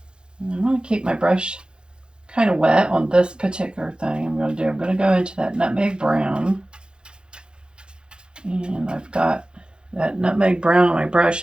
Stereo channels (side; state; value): left; late; 0.050 ms